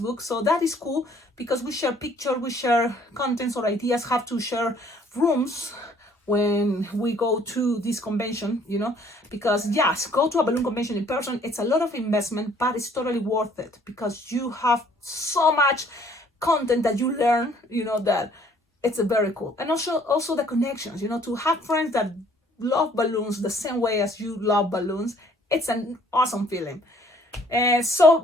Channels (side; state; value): both; normal; correlation 0.59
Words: so that is cool, because we share pictures, we share contents or ideas, have to share rooms when we go to this convention, because yes, go to a balloon convention in person, it's a lot of investment, but it's totally worth it, because you have so much content that you learn, that it's a very cool. And also the connections, to have friends that love balloons the same way as you love balloons. It's an awesome feeling. So,